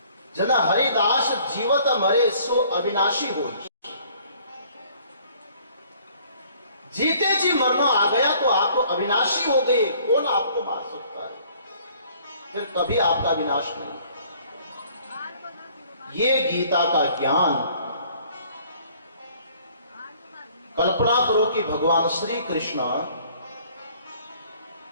जना हरिदास जीवत मरे सो अविनाशी हो। जीते जी मरना आ गया तो आप तो अविनाशी हो गए, कौन आपको मार सकता है? फिर कभी आपका विनाश नहीं। ये गीता का ज्ञान, कल्पना करो कि भगवान श्री कृष्ण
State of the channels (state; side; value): inverted; both; correlation -0.57